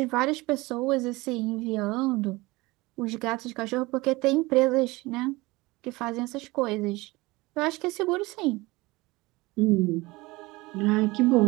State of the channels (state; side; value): quieter; left; 21.9 dB